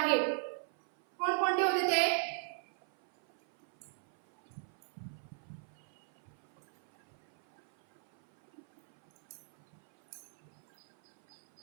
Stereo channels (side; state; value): left; silent; 53 dB below the other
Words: कोणकोणते होते ते?